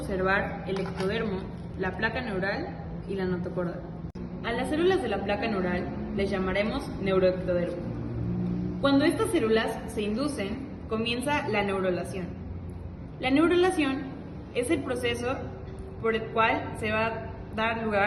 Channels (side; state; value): both; identical; correlation 1.00